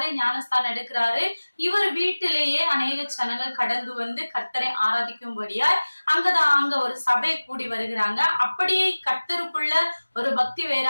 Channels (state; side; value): inverted; both; correlation -1.00